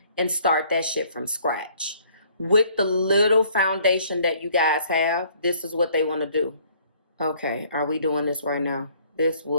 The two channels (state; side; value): inverted; both; correlation -0.60